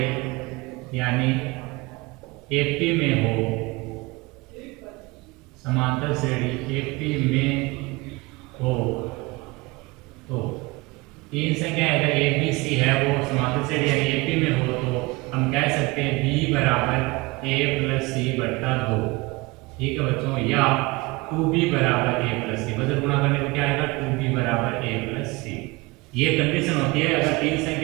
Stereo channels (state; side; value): quieter; left; 23.8 dB